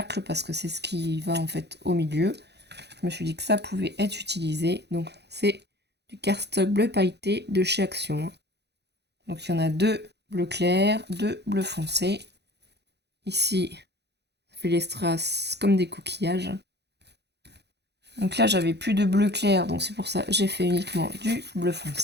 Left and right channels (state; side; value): late; left; 0.49 ms